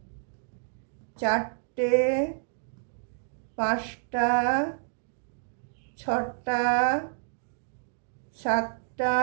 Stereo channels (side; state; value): left; silent; digital silence